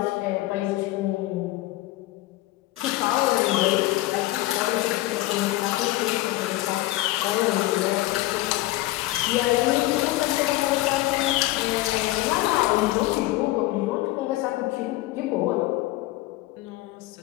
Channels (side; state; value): right; quieter; 17.6 dB